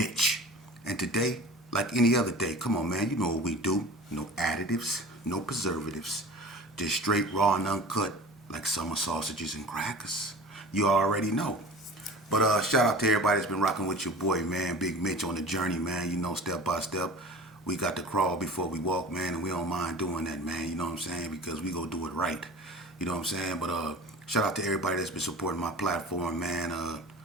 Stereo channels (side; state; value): both; normal; correlation 0.39